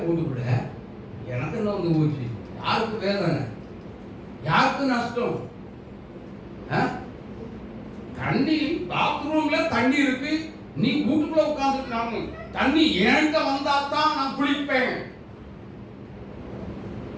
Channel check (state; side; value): identical; both; correlation 1.00